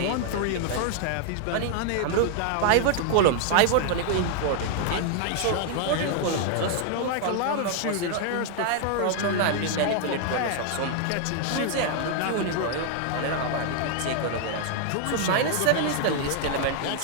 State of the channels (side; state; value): both; different; correlation 0.00